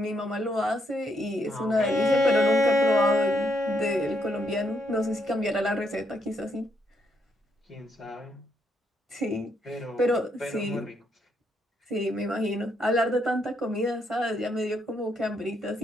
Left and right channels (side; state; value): both; normal; correlation 0.76